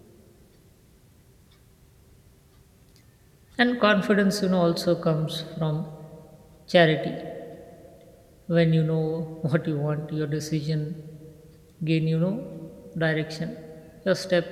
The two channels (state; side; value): identical; both; correlation 1.00